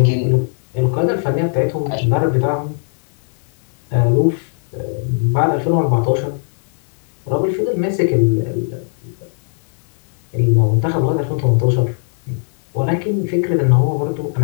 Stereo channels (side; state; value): right; silent; digital silence